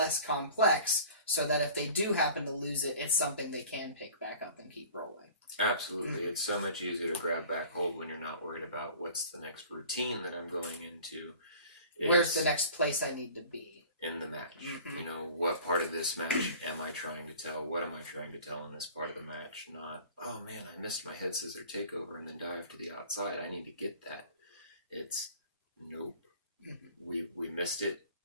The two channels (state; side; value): inverted; both; correlation -0.44